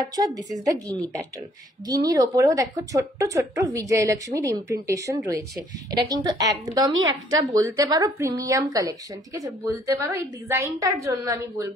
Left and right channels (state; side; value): normal; both; correlation 0.63